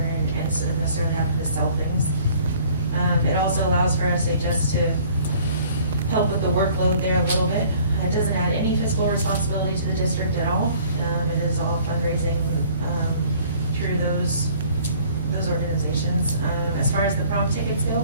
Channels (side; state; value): both; inverted; correlation -0.54